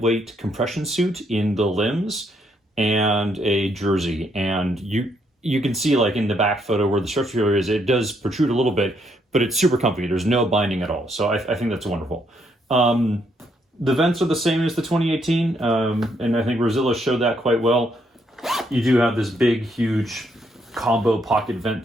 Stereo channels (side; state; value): both; normal; correlation 0.73